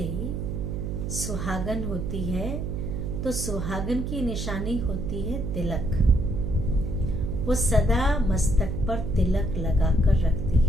सुहागन होती है तो सुहागन की निशानी होती है तिलक। वो सदा मस्तक पर तिलक लगाकर रखती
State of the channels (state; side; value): noise; right; hum, 3 dB below the sound